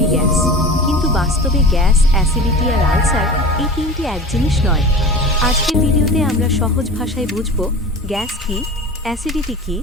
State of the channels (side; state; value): both; normal; correlation 0.35